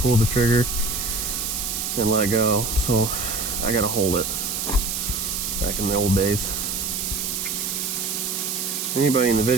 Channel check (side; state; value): right; noise; hiss, 2 dB below the sound